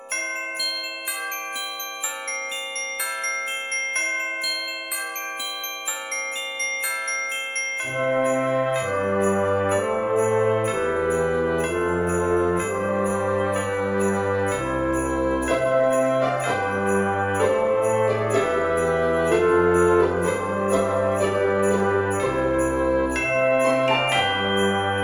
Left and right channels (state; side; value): identical; both; correlation 1.00